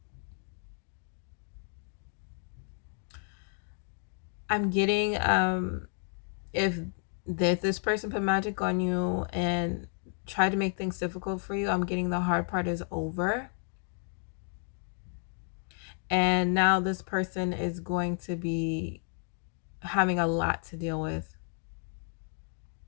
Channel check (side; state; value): right; silent; 56 dB below the other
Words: I'm getting if this person put magic on you and tried to make things difficult for you, I'm getting the hard part is over. And now this person is going to be having a lot to deal with,